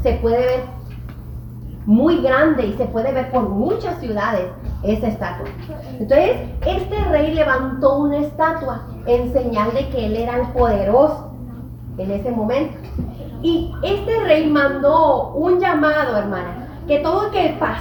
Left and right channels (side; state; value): both; identical; correlation 1.00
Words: Se puede ver muy grande y se puede ver por muchas ciudades esa estatua. Entonces, este rey levantó una estatua en señal de que él era el poderoso en ese momento. Y este rey mandó un llamado, hermana, que todo el que